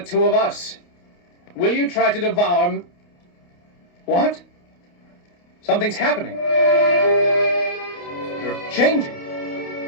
two of us? Will you try to devour What? Something's happening. You're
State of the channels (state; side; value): late; right; 29 ms